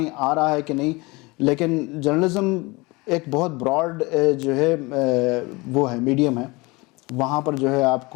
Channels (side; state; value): right; quieter; 24.6 dB